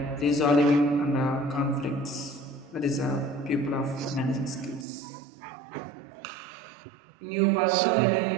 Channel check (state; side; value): drops out; left; at 4.9 s